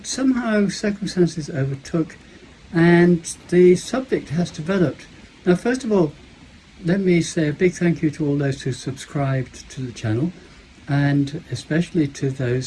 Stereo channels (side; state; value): both; identical; correlation 1.00